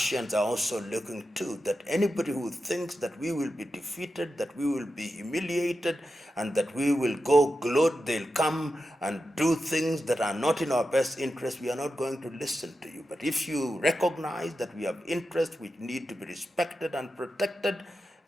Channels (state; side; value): normal; both; correlation 0.90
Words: are also looking to, that anybody who thinks that we will be defeated, that we will be humiliated, and that we will go gloat, they'll come and do things that are not in our best interest, we are not going to listen to you. But if you recognize that we have interests which need to be respected and protected,